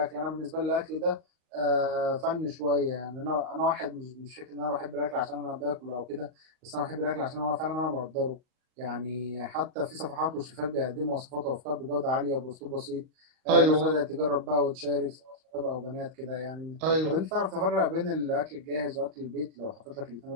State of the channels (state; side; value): late; left; 38 ms